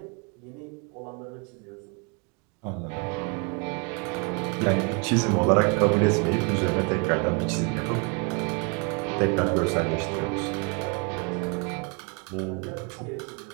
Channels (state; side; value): quieter; left; 33.6 dB